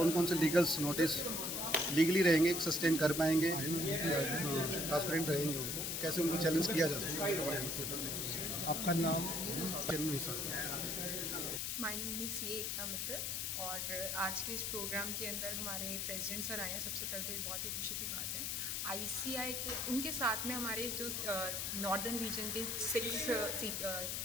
कौन से लीगल्स नोटिस लीगली रहेंगे, सस्टेन कर पाएंगे या ट्रांसपेरेंट रहेंगे, उनको कैसे उनको चैलेंज किया जा सकता है, उसके बारे में। आपका नाम? माय नेम इज़ सी एकता मित्तल और आज के इस प्रोग्राम के अंदर हमारे प्रेसिडेंट सर आए हैं। सबसे पहले तो ये बहुत ही खुशी की बात है। आईसीआई के उनके साथ में हमारे जो नॉर्दर्न रीजन के 6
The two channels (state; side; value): noise; left; hiss, 1 dB below the sound